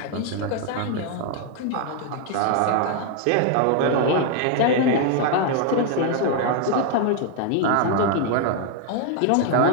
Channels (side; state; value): both; different; correlation 0.00